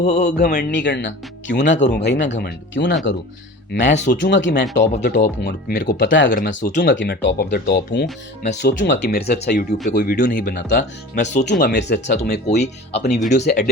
घमंड नहीं करना। क्यों ना करूं भाई मैं घमंड, क्यों ना करूं? मैं सोचूंगा कि मैं टॉप ऑफ द टॉप हूं, और मेरे को पता है अगर मैं सोचूंगा कि मैं टॉप ऑफ द टॉप हूं, मैं सोचूंगा कि मेरे से अच्छा यूट्यूब पे कोई वीडियो नहीं बनाता, मैं सोचूंगा मेरे से अच्छा तुम्हें कोई अपनी वीडियो से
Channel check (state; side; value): normal; both; correlation 0.38